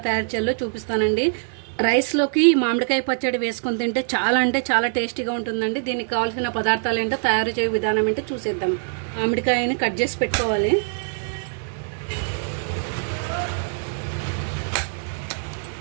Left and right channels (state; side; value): silent; left; digital silence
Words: తయారు చేయాలో చూపిస్తానండి. రైస్లోకి మామిడికాయ పచ్చడి వేసుకొని తింటే చాలా అంటే చాలా టేస్టీగా ఉంటుందండి. దీనికి కావాల్సిన పదార్థాలు ఏంటో తయారు చేయ విధానం ఏంటో చూసేద్దాం. మామిడికాయని కట్ చేసి పెట్టుకోవాలి.